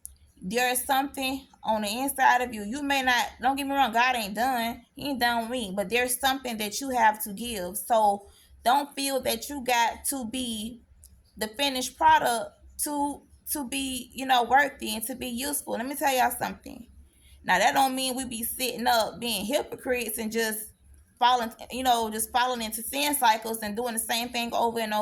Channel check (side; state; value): both; identical; correlation 1.00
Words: There's something on the inside of you. You may not, don't get me wrong, God ain't done, he ain't done with me, but there's something that you have to give. So don't feel that you got to be the finished product to be, worthy and to be useful. Let me tell y'all something. Now that don't mean we be sitting up being hypocrites and just falling into sin cycles and doing the same thing over and